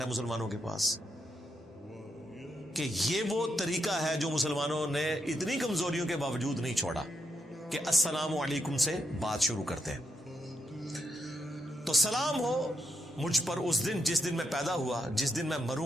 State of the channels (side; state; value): both; normal; correlation 0.81